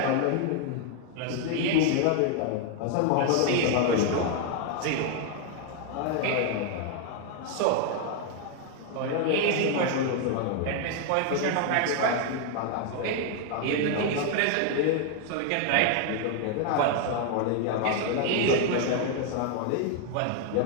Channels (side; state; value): both; different; correlation 0.00